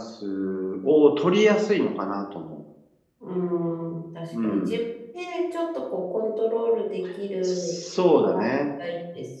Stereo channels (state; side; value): identical; both; correlation 1.00